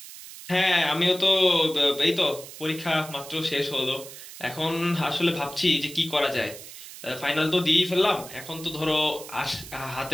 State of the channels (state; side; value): noise; right; hiss, 14 dB below the sound